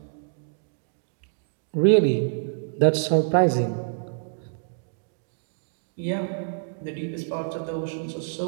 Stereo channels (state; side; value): silent; left; digital silence